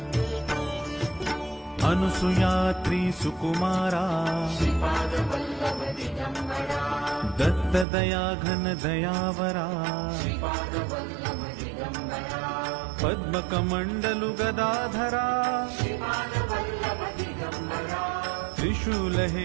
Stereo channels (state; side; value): drops out; left; at 7.9 s